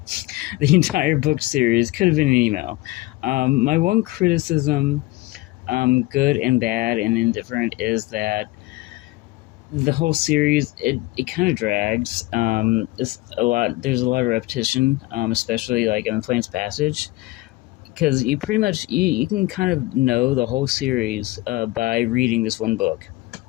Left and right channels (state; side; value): quieter; right; 19.8 dB